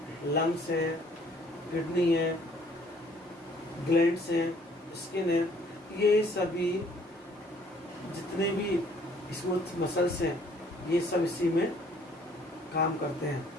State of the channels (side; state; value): both; normal; correlation 0.60